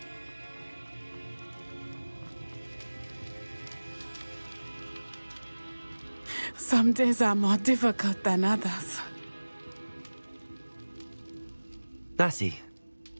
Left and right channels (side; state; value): both; inverted; correlation -1.00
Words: Some days are more difficult than others. Natty,